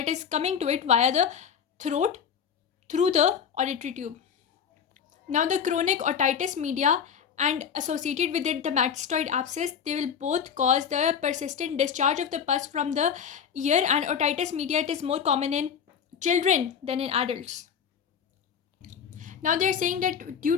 is coming to it via the throat through the auditory tube. Now the chronic otitis media and associated with it the mastoid abscess, they will both cause the persistent discharge of the pus from the ear, and otitis media, it is more common in children than in adults. Now they are saying that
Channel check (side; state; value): right; quieter; 7.5 dB